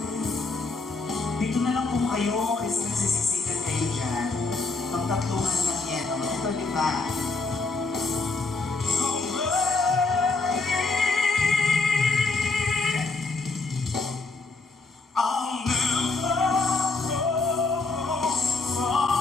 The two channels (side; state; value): right; quieter; 3.7 dB